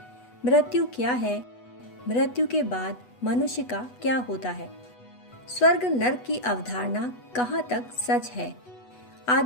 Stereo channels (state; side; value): late; right; 8.1 ms